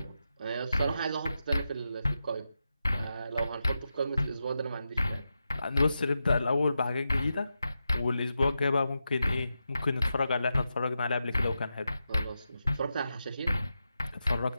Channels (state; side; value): inverted; both; correlation -0.89